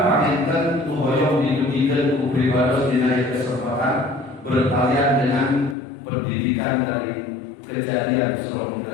paminten hoyong didugikan ku pribadi dina kesempatan bertalian dengan pendidikan dari kejadian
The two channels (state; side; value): drops out; right; at 5.8 s